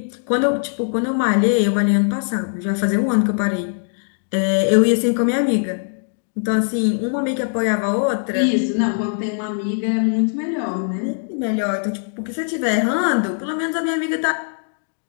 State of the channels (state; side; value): silent; right; digital silence